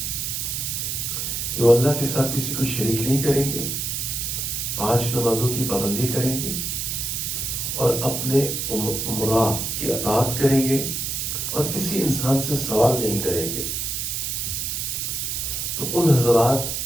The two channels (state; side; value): noise; right; hiss, 2 dB below the sound